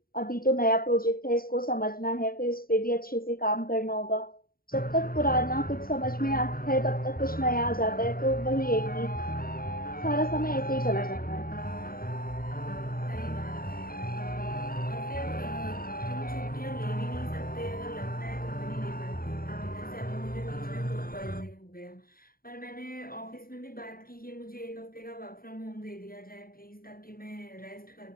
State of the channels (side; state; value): right; late; 0.43 ms